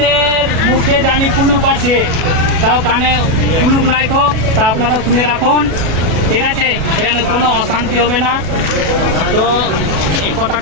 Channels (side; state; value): left; late; 36 ms